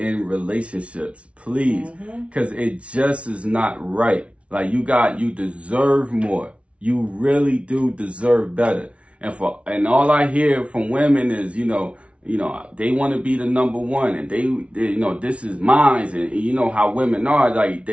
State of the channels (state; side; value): late; left; 0.062 ms